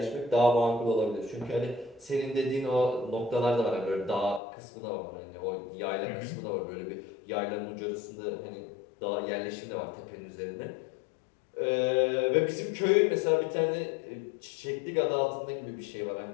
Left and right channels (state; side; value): drops out; right; at 4.4 s